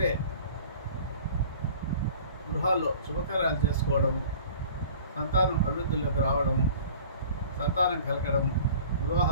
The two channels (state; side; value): inverted; both; correlation -0.46